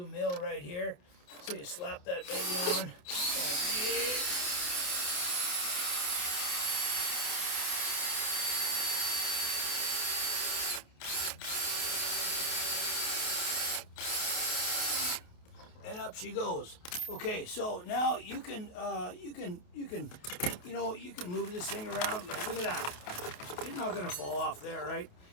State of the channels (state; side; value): late; right; 28 ms